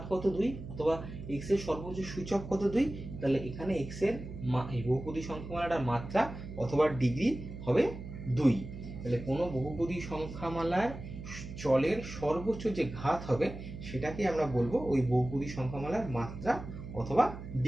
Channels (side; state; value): right; noise; hum, 10 dB below the sound